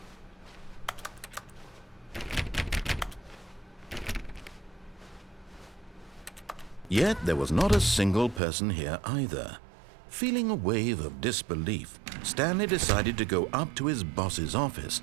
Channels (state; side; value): drops out; left; at 8.4 s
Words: Yet there was not a single person here either. Feeling a wave of disbelief, Stanley decided to go up to his boss's office,